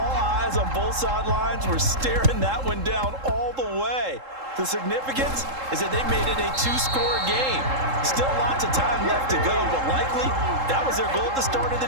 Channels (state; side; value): late; left; 3.7 ms